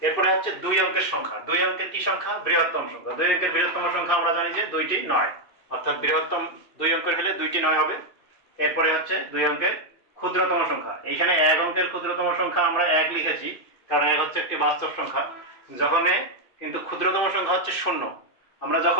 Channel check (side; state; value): right; late; 2.5 ms